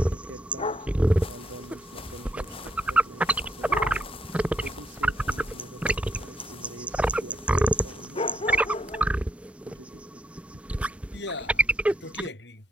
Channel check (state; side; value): normal; both; correlation 0.74